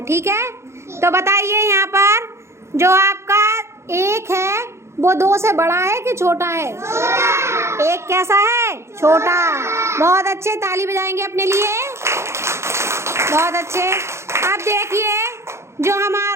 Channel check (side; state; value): left; late; 0.13 ms